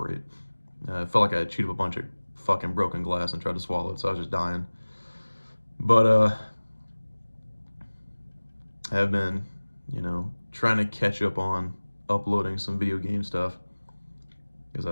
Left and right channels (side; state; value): both; inverted; correlation -1.00